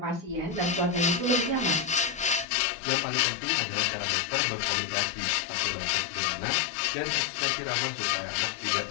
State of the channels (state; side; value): drops out; right; at 2.5 s